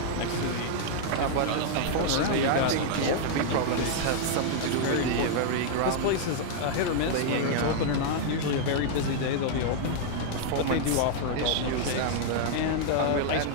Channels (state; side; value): different; both; correlation -0.01